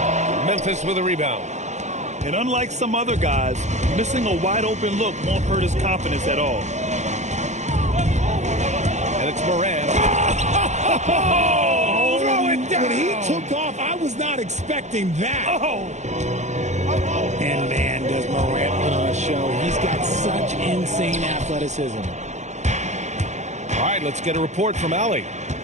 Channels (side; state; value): left; late; 0.34 ms